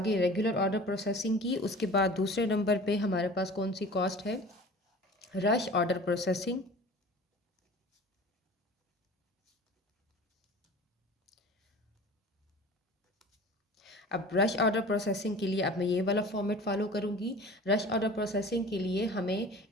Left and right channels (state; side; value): normal; both; correlation 0.41